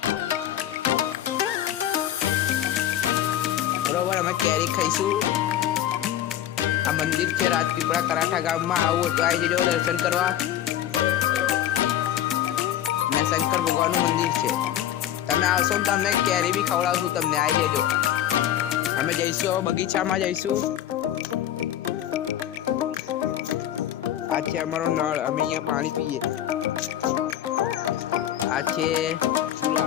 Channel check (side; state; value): right; quieter; 11.6 dB